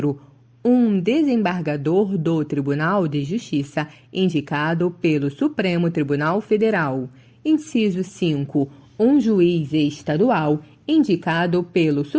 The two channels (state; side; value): identical; both; correlation 1.00